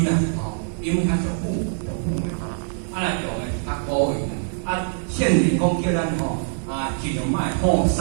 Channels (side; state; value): left; silent; digital silence